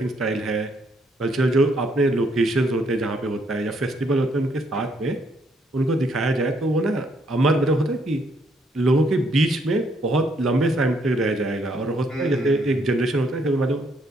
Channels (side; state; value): both; normal; correlation 0.71